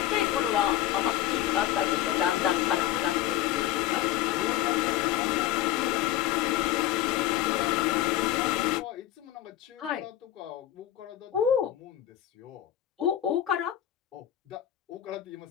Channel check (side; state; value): right; quieter; 12.5 dB